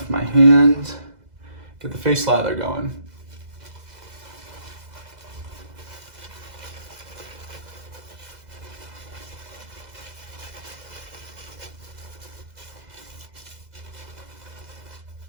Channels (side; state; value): left; late; 2.0 ms